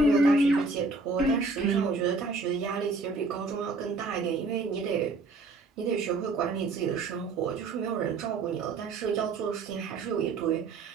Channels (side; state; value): left; quieter; 3.8 dB